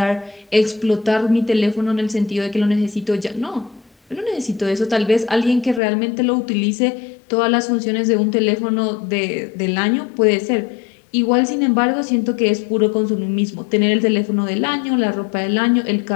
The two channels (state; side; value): drops out; right; at 5.8 s